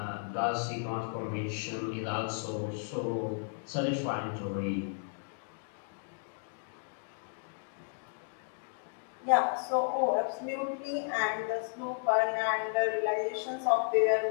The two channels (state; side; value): silent; right; 55 dB below the other